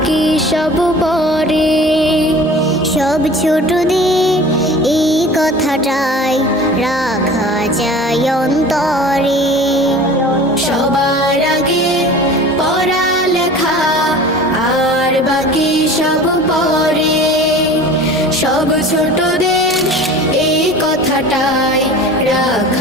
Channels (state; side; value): normal; both; correlation 0.41